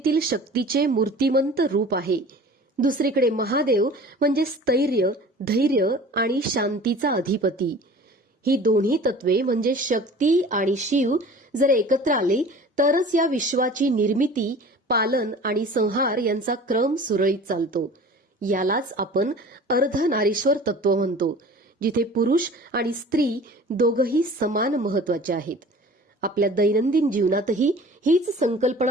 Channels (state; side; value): normal; both; correlation 0.43